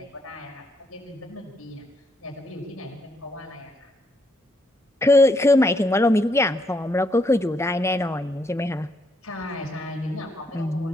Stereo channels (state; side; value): normal; both; correlation 0.75